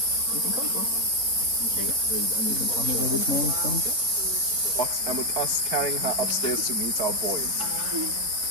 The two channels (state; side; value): late; left; 3.8 ms